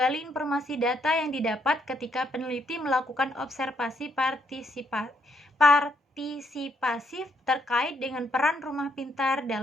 informasi data yang didapat ketika peneliti melakukan observasi partisipasif terkait dengan peran rumah pintar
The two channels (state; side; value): normal; both; correlation 0.74